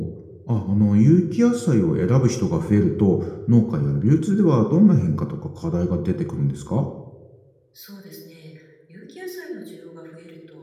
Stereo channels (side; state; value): both; identical; correlation 1.00